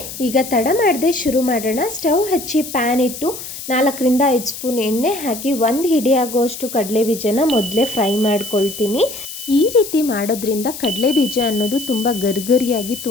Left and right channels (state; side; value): noise; left; hiss, 10 dB below the sound